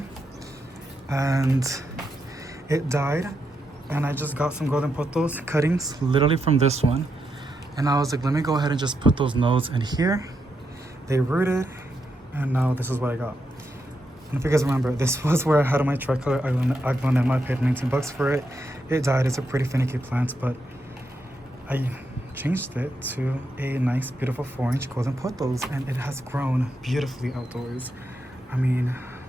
and it died. And I just got some golden pothos cuttings, literally from this one. And I was like, let me go ahead and just put those nodes in here. They rooted, and now this is what I got. And if you guys remember, this was where I had my tricolor aglonema. I paid 19 bucks for it. It died. It's a pretty finicky plant, but I changed it to a nice, beautiful 4-inch golden pothos, and it has grown beautifully outdoors. I mean,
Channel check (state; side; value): normal; both; correlation 0.83